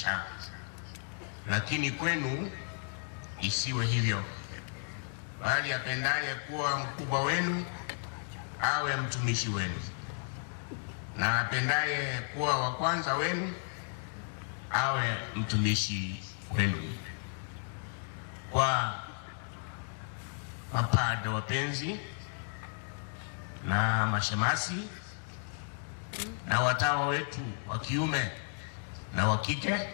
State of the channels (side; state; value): right; silent; 55 dB below the other